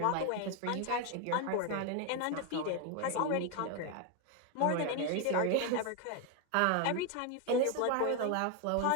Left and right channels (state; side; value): different; both; correlation 0.01